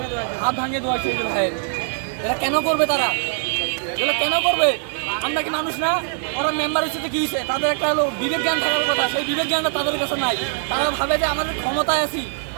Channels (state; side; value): silent; left; digital silence